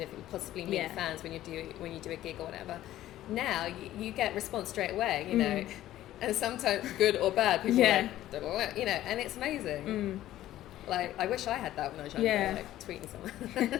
of possibly meet fans when you do a gig or whatever. Now you get response straight away, you know, and sometimes good or bad. People are like, you know, and it's amazing. Like, I wish I had that when I was younger, like tweeting someone.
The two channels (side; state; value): right; quieter; 13.9 dB